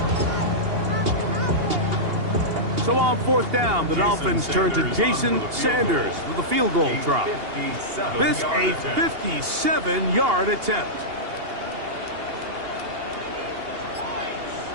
So on 4th down, the Dolphins turn to Jason Sanders with a field goal try. This a 57-yard attempt.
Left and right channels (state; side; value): late; left; 2.8 ms